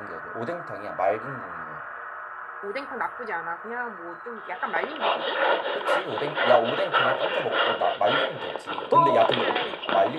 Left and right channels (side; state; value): both; identical; correlation 1.00